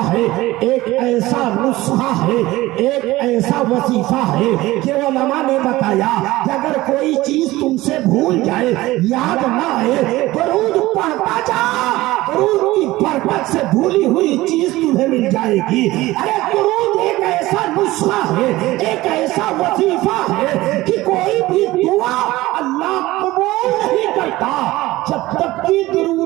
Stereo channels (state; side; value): quieter; left; 18.2 dB